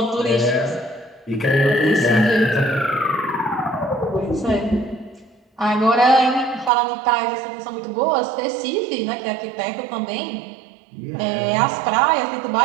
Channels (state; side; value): drops out; left; at 6.7 s